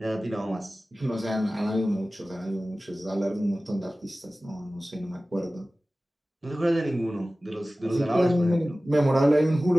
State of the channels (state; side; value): normal; both; correlation 0.97